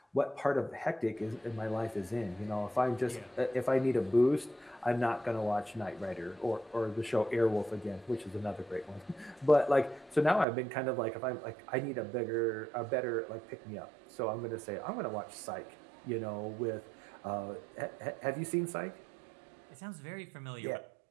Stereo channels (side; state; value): left; drops out; at 10.5 s